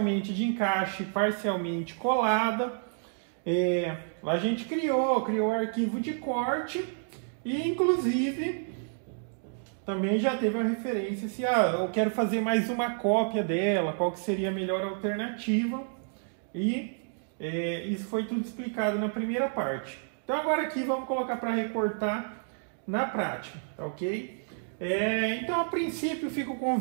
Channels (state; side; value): silent; left; digital silence